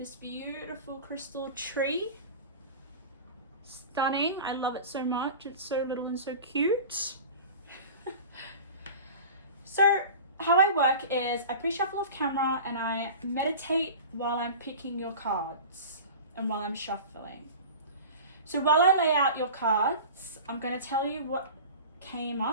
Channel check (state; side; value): inverted; both; correlation -0.36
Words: beautiful crystal tree, stunning. I love it so much. It's so little and so cute. So how I work is I pre-shuffle off camera and I meditate while I'm picking your cards and while I'm shuffling. So while I lay out your cards, I'm going to tell you what came